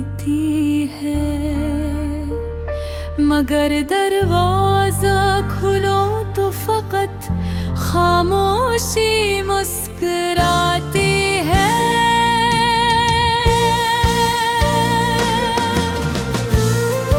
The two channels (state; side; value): identical; both; correlation 1.00